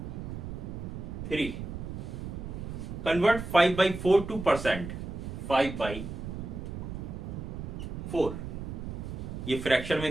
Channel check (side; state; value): right; noise; rumble, 7 dB below the sound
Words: 3, कन्वर्ट 5/4 टू परसेंट, 5/4, ये फ्रैक्शन में